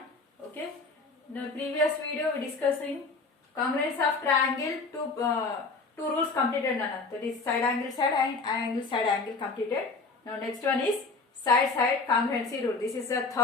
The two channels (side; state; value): right; quieter; 3.9 dB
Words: Okay. In the previous video we discussing congruence of triangle. Two rules completed, Nana. That is side angle and side angle completed. Now next one is side congruency rule. This is the